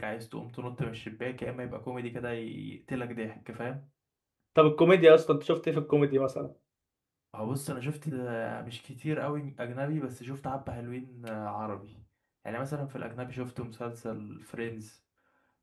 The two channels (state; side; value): identical; both; correlation 1.00